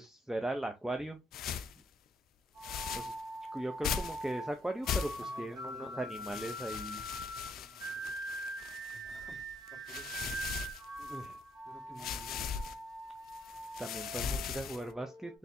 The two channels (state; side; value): normal; both; correlation 0.72